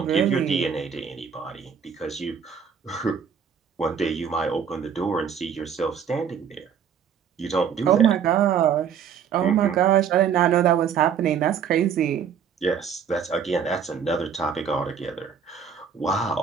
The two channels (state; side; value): quieter; left; 7.4 dB